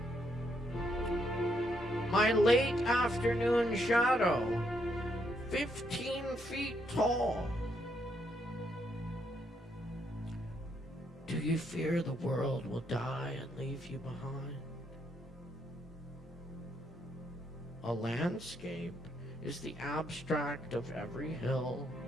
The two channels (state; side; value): normal; both; correlation 0.75